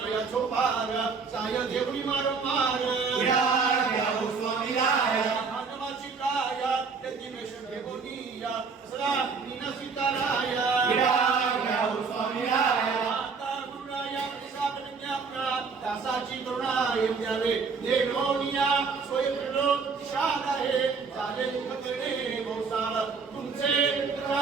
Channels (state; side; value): quieter; left; 5.1 dB